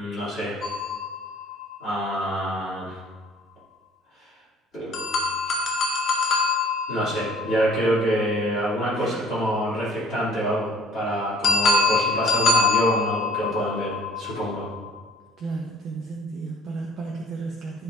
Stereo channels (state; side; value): normal; both; correlation 0.52